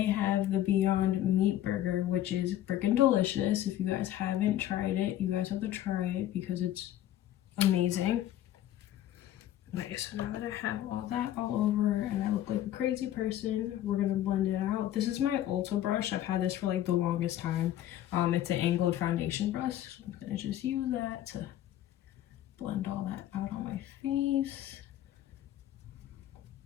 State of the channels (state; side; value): quieter; right; 12.6 dB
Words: have the Beyond Meat Burger, which is freaking delicious. If you guys haven't tried it, you guys have to try it because it's amazing. Nice. So now that I have all that all over and I look like a crazy person, we're gonna blend it out. This is my Ulta brush. I've had this for the longest time. It's an angled foundation brush. So I'm gonna just use that to blend all that out on my face.